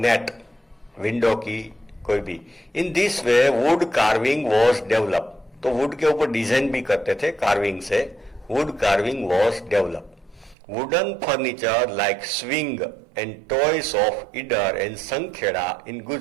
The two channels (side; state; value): left; drops out; at 10.6 s